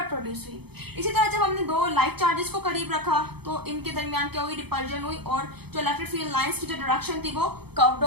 प्रोड्यूस हुई। इसी तरह जब हमने दो लाइक चार्जेस को करीब रखा तो इनके दरमियान क्या हुई, रिपल्जन हुई और जो इलेक्ट्रिक फील्ड लाइंस की जो डायरेक्शन थी वो कर्व्ड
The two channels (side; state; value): left; late; 0.97 ms